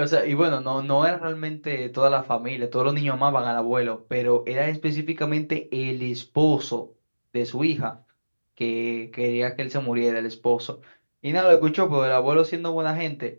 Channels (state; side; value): inverted; both; correlation -1.00